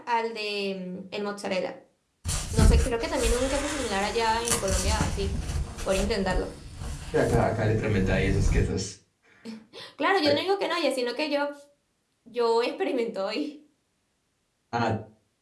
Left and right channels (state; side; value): identical; both; correlation 1.00